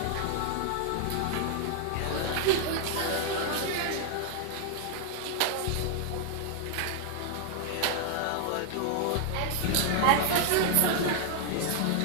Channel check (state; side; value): different; both; correlation 0.00